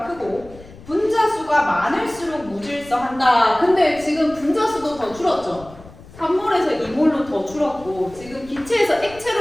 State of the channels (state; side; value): noise; left; rumble, 20 dB below the sound